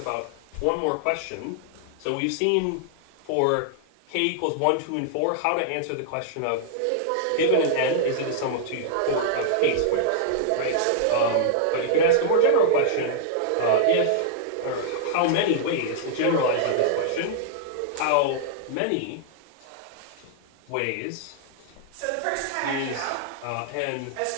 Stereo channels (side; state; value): both; different; correlation -0.01